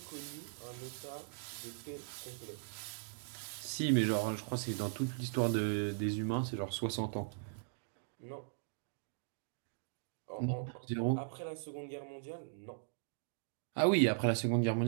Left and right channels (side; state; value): left; silent; digital silence